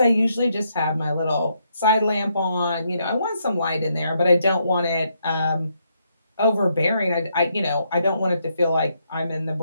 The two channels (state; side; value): inverted; both; correlation -0.76